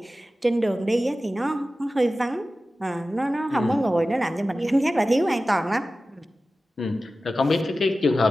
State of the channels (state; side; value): normal; both; correlation 0.95